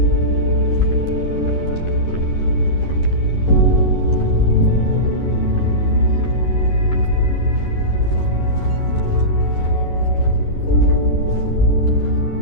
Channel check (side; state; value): right; late; 11 ms